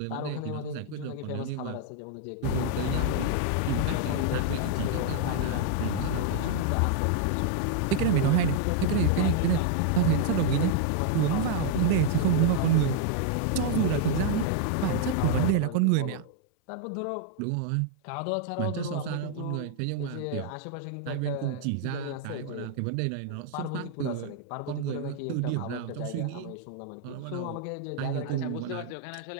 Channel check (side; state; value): both; different; correlation -0.01